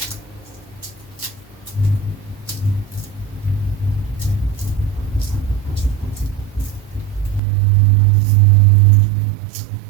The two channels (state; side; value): drops out; left; at 7.4 s